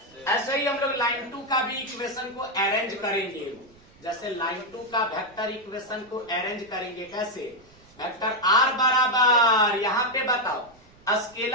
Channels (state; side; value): noise; right; rumble, 28 dB below the sound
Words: ऐसे ही हम लोग लाइन 2 का भी इक्वेशन को अरेंज करेंगे। जैसे लाइन 2 का वेक्टर इक्वेशन को अरेंज करेंगे, कैसे? वेक्टर r बराबर, यहाँ पे बताओ